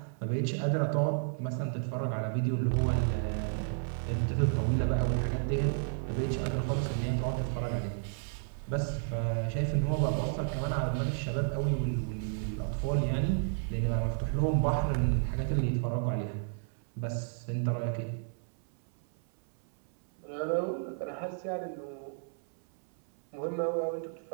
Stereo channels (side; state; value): left; silent; 56 dB below the other